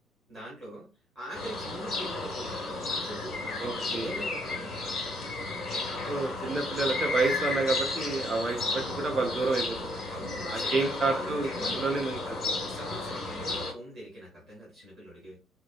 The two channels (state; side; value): normal; both; correlation 0.69